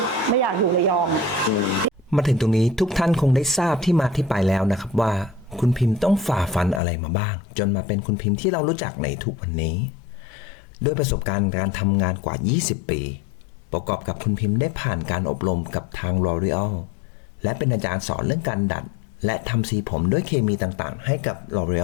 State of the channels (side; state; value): right; drops out; at 6.8 s